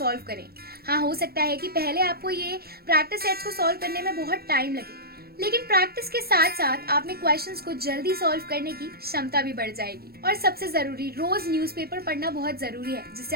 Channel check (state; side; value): late; left; 0.45 ms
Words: करें। हाँ, हो सकता है कि पहले आपको ये प्रैक्टिस टेस्ट को सॉल्व करने में बहुत टाइम लगे, लेकिन प्रैक्टिस के साथ साथ आप में क्वेश्चंस को जल्दी सॉल्व करने की क्षमता भी बढ़ जाएगी। और सबसे जरूरी, रोज न्यूज़पेपर पढ़ना बहुत जरूरी है, जिससे